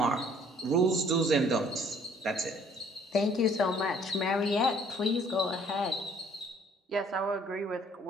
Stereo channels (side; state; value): both; normal; correlation 0.58